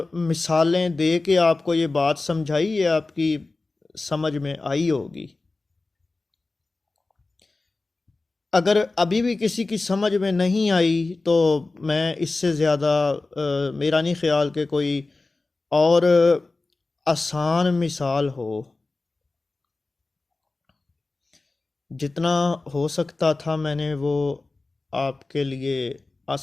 मिसालें दे के आपको ये बात समझाई, ये आपकी समझ में आई होगी। अगर अभी भी किसी की समझ में नहीं आई तो मैं इससे ज़्यादा मेरा नहीं ख्याल कि कोई और आसान मिसाल हो। जितना हो सकता था मैंने वो आपके लिए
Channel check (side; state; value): right; quieter; 3.4 dB